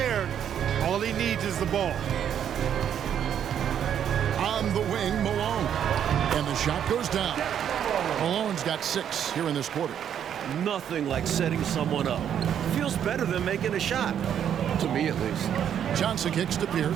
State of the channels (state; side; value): quieter; left; 9.2 dB